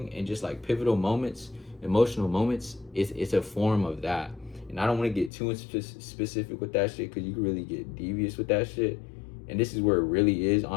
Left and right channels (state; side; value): drops out; right; at 5.3 s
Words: and just like pivotal moments, emotional moments, it's a form of that. And I don't want to get too specific with that shit, because you can really get devious with that shit. And this is where it really is,